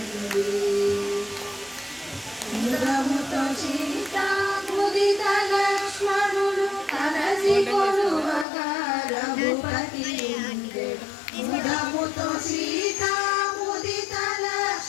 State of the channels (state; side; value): drops out; right; at 8.5 s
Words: ఇంద్రముతో సీత ముదిత లక్ష్మణులు కలసి కొలువగా రఘుపతి ఉండెడు. ఇంద్రముతో సీత ముదిత